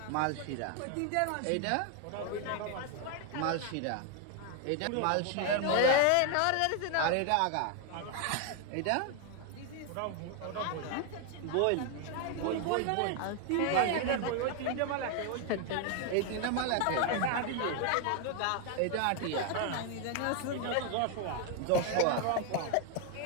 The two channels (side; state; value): both; different; correlation 0.01